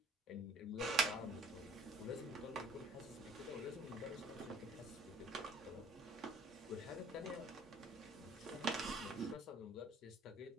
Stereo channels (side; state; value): both; normal; correlation 0.54